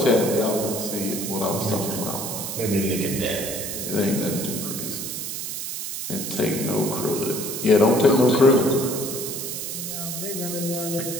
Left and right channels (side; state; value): right; noise; hiss, 5 dB below the sound